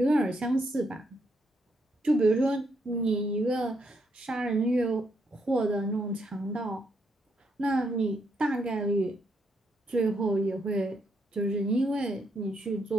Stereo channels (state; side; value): normal; both; correlation 0.77